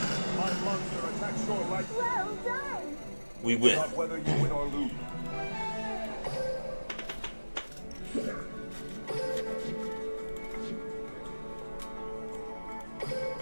My monster attacks your light. Well done! We win. Not whether you win or lose.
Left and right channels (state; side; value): inverted; both; correlation -1.00